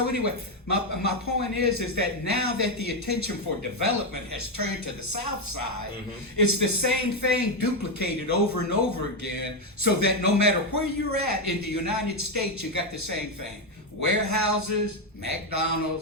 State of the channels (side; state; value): both; normal; correlation 0.06